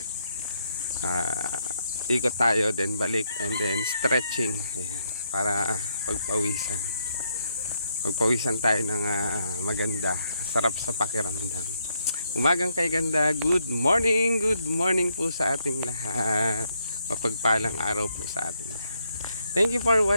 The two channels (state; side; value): inverted; both; correlation -0.76